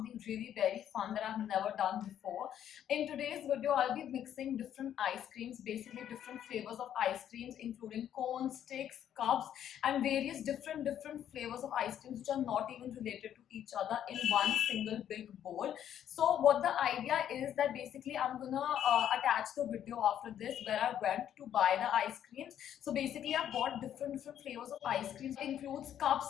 really very fun that I've never done before. In today's video I'll be mixing different ice creams, basically different flavors of ice creams including cones, sticks, cups and various different flavors of ice creams which are not even related to each other in one single big bowl. So what the idea is that basically I'm gonna attach the video after this where I went to buy the ice creams. So basically I bought different flavors of ice creams. It includes cup,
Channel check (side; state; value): right; quieter; 10.2 dB